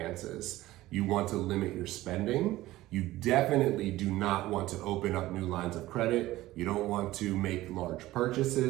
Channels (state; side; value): quieter; left; 16.7 dB